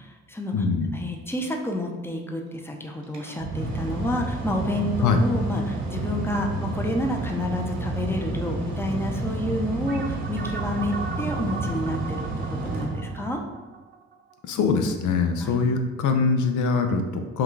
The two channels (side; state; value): both; normal; correlation 0.44